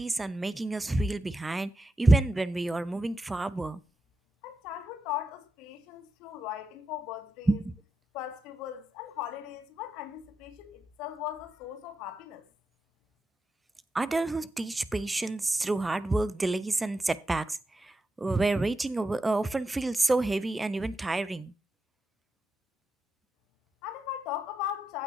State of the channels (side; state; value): both; normal; correlation 0.88